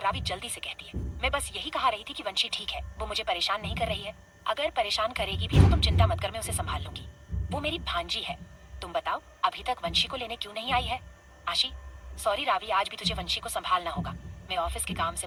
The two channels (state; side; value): identical; both; correlation 1.00